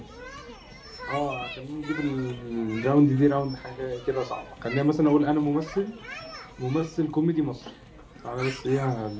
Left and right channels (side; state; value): both; identical; correlation 1.00